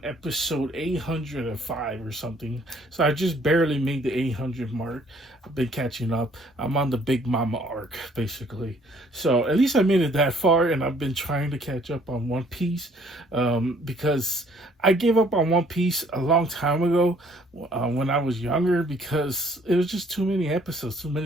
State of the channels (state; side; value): normal; both; correlation 0.61